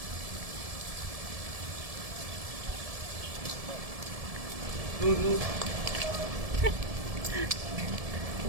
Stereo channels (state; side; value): late; left; 1.7 ms